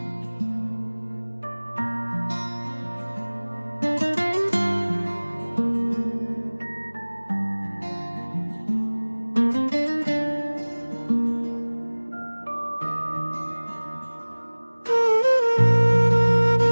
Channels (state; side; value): inverted; both; correlation -1.00